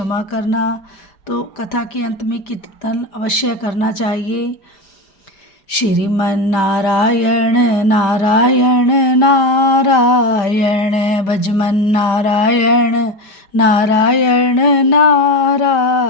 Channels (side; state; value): right; late; 5.1 ms